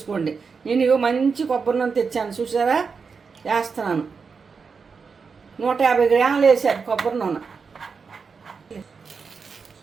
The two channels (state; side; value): quieter; left; 5.3 dB